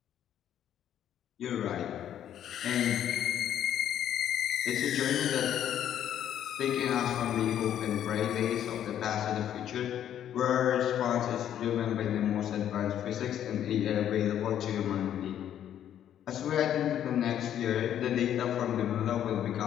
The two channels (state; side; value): quieter; right; 10.5 dB